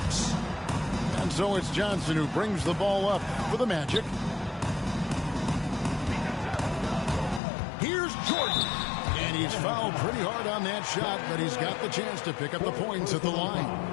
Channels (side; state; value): right; drops out; at 7.4 s